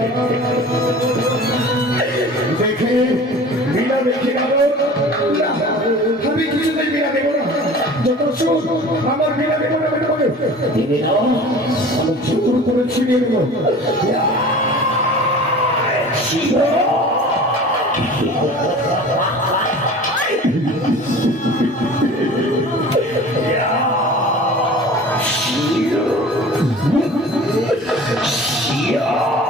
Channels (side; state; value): both; normal; correlation 0.41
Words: দেখে বীণা দেখে গেল, আমি কিছুতেই বীণা দেবো না। যত সুখ আমার বীণা দেবো না, আমি চুর করে ছিনিয়ে দেবো।